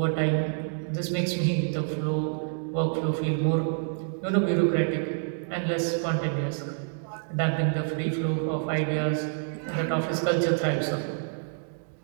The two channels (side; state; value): left; silent; digital silence